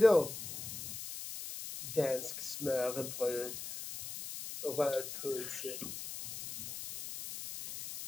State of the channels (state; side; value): noise; left; hiss, 8 dB below the sound